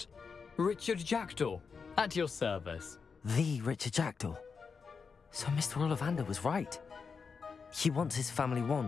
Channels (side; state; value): right; quieter; 5.4 dB